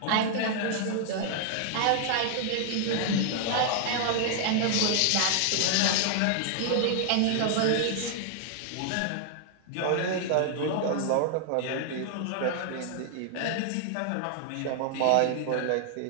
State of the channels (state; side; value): different; both; correlation 0.00